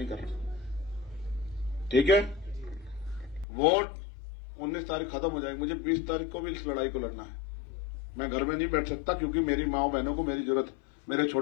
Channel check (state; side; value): drops out; right; at 3.5 s